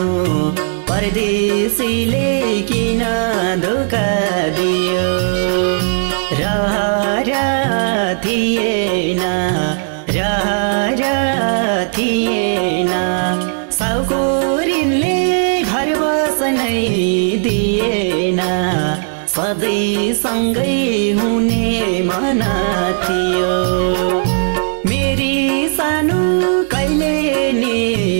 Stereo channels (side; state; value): left; silent; digital silence